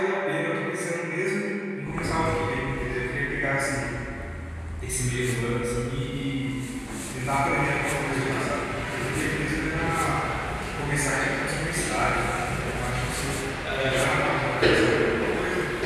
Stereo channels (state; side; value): identical; both; correlation 1.00